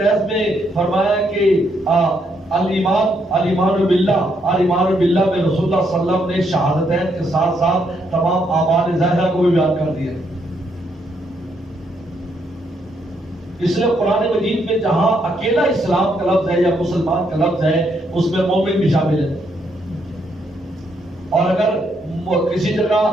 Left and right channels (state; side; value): normal; both; correlation 0.75